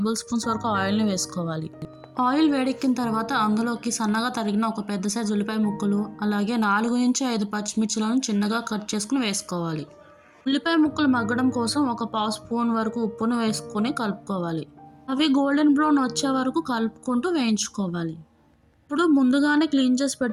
స్పూన్స్ వరకు ఆయిల్ని వేసుకోవాలి. ఆయిల్ వేడెక్కిన తర్వాత అందులోకి సన్నగా తరిగిన ఒక పెద్ద సైజు ఉల్లిపాయ ముక్కలు, అలాగే 4 నుంచి 5 పచ్చిమిర్చిలను చిన్నగా కట్ చేసుకుని వేసుకోవాలి. ఉల్లిపాయ ముక్కలు మగ్గడం కోసం ఒక పావు స్పూన్ వరకు ఉప్పును వేసుకొని కలుపుకోవాలి. అవి గోల్డెన్ బ్రౌన్ వచ్చే వరకు కలుపుకుంటూ వేయించుకోవాలి. ఇప్పుడు ముందుగానే క్లీన్ చేసి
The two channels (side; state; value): both; identical; correlation 1.00